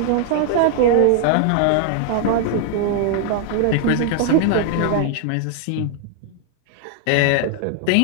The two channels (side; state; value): both; different; correlation 0.00